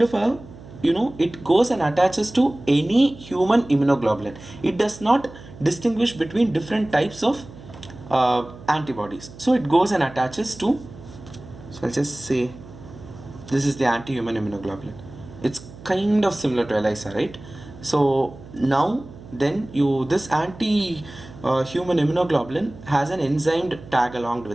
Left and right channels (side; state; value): right; noise; hum, 18 dB below the sound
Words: of a, it goes and attaches to any human immunoglobulin. It does not distinguish between different types of antibodies. So it goes and attaches to, so I'll just say this is the anti-human immunoglobulin. It's kind of similar to ELISA, right? So now then this anti-human immunoglobulin has an enzyme tag along